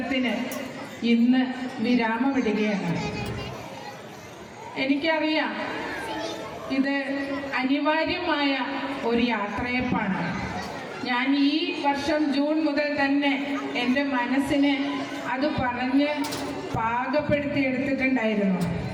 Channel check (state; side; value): identical; both; correlation 1.00